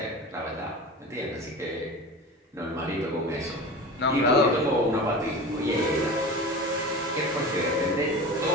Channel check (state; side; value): normal; both; correlation 0.32